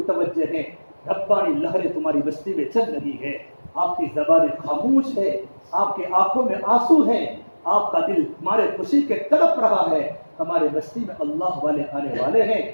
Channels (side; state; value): both; inverted; correlation -1.00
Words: ہیں, ربانی لہریں تمہاری بستی میں چل رہی ہے. آپ کی زبانیں خاموش ہے, آپ کی آنکھوں میں آنسو ہیں, آپ کا دل تمہارے خوشی کے تڑپ رہا ہے. ہمارے بستی میں اللہ والے آنے والے ہیں,